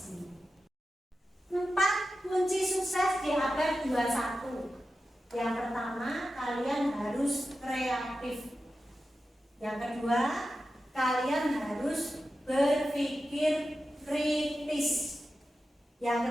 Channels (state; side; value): normal; both; correlation 0.92